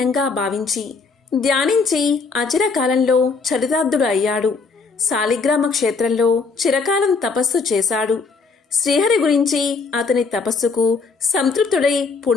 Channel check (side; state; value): right; quieter; 4.6 dB